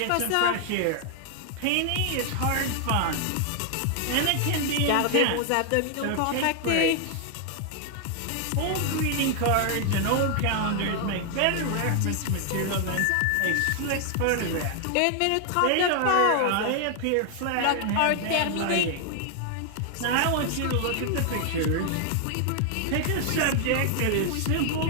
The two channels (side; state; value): both; different; correlation 0.00